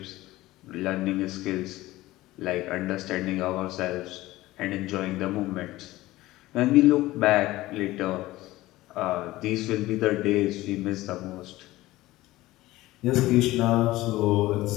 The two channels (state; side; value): quieter; right; 17.6 dB